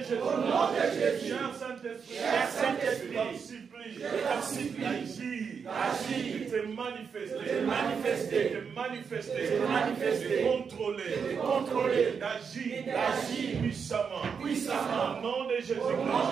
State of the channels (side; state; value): left; quieter; 6.3 dB